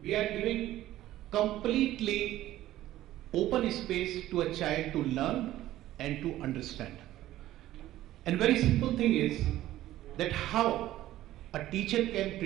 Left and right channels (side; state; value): left; quieter; 14.5 dB